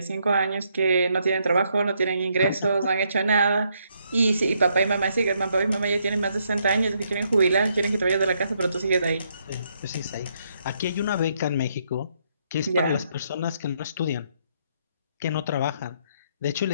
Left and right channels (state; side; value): inverted; both; correlation -0.74